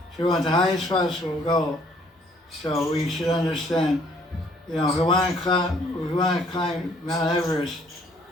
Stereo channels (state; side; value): normal; both; correlation 0.63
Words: So we want the highest possible goal. So we should understand, if we want to climb Mount Everest,